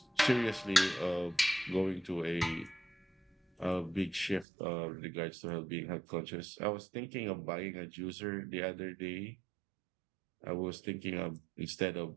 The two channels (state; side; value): drops out; left; at 4.5 s